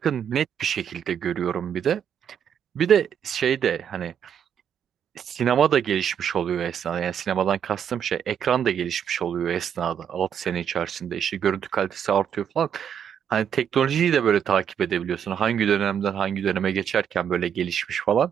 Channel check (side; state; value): left; quieter; 8.5 dB